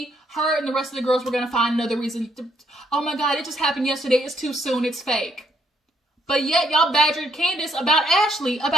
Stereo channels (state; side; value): normal; both; correlation 0.71